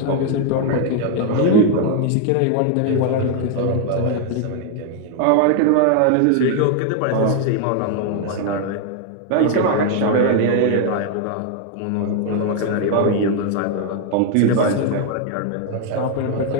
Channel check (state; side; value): different; both; correlation 0.00